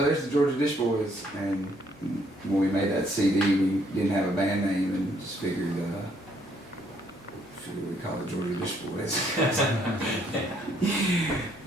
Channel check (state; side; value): normal; both; correlation 0.68